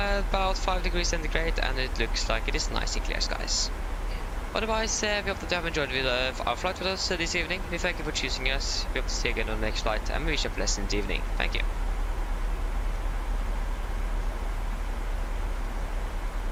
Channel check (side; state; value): both; identical; correlation 1.00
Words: 5 degrees centigrade, and it looks like it is nice and clear skies. Otherwise, we hope that you have enjoyed our flight with us this evening. We thank you for choosing us. We hope to see you again on the next flight, and we wish you a pleasant evening. Thank you.